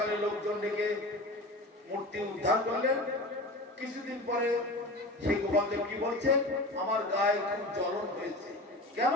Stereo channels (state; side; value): normal; both; correlation 0.32